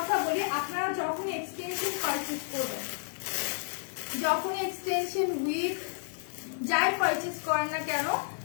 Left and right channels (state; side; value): silent; right; digital silence